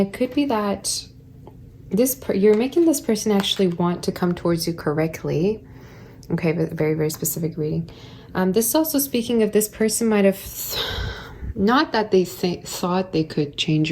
could be that you're making this person actually want to come towards you correctly. Okay, but very, very specific reading. This is also speaking of this person might have, not that they thought they could change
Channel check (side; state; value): both; identical; correlation 1.00